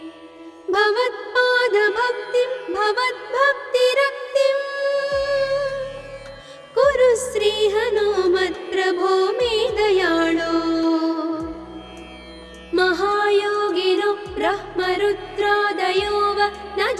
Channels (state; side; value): identical; both; correlation 1.00